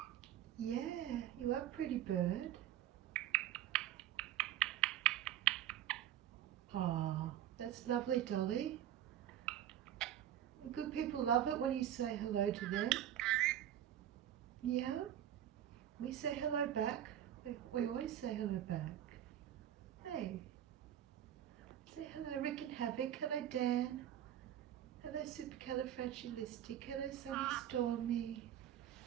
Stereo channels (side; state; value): left; quieter; 11.3 dB